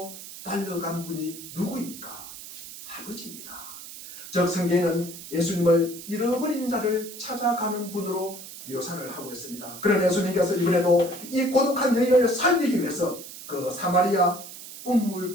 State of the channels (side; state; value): right; noise; hiss, 13 dB below the sound